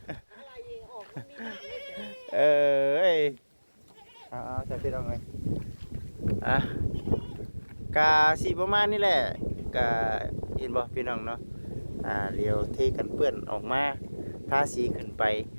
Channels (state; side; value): inverted; both; correlation -1.00